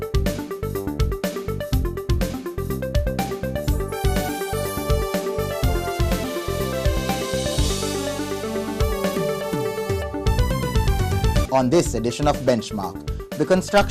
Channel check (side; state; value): both; identical; correlation 1.00